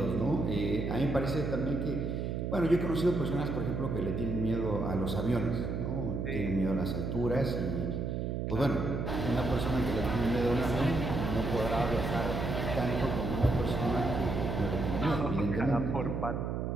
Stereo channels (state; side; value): noise; right; hum, 2 dB below the sound